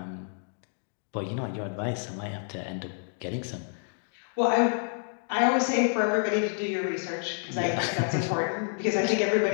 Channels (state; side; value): silent; right; digital silence